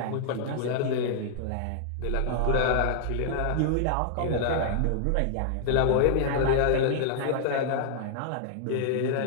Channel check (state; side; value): different; both; correlation -0.01